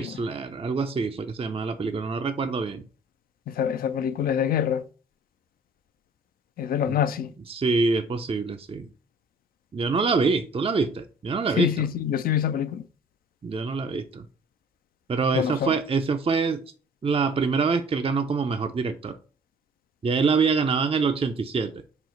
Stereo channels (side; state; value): both; normal; correlation 0.52